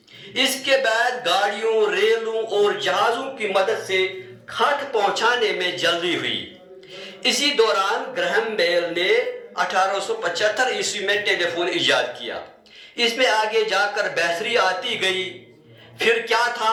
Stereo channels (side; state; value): both; identical; correlation 1.00